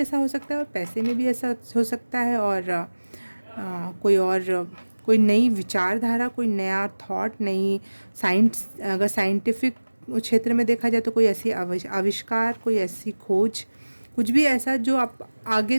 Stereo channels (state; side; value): inverted; both; correlation -1.00